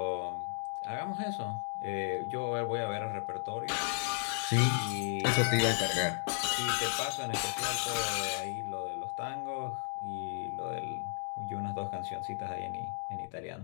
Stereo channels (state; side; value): silent; right; 55 dB below the other